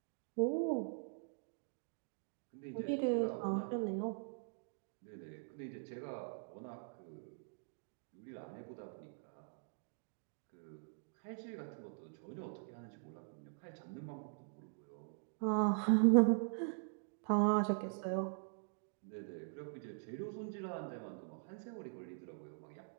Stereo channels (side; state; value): left; silent; digital silence